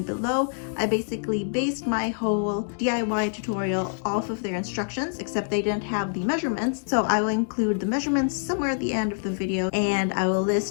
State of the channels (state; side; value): silent; right; digital silence